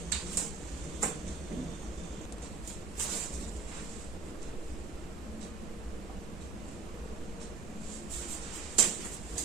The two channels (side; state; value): left; quieter; 4.8 dB